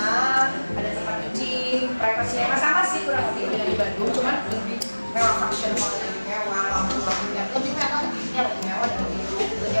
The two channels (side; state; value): both; inverted; correlation -1.00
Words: ada tempat cuci, privasinya sama sih kurang lebih dengan di Bandung, cuman lebih mewah, function hall lebih mewah, lampu-lampunya lebih mewah, lebih mewah dan